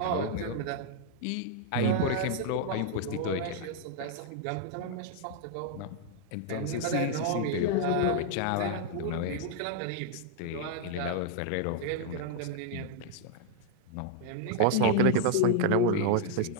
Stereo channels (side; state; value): both; different; correlation -0.01